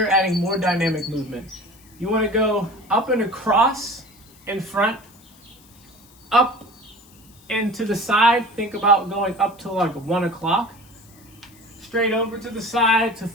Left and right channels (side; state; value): left; noise; hiss, 27 dB below the sound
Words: adding more dynamic movement. You want to go up and across in front, up and to the side, think about going up to like 1 o'clock. Straight over to the side to